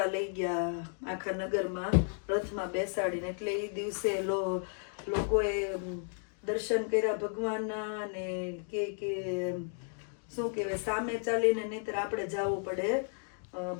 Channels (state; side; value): silent; right; 55 dB below the other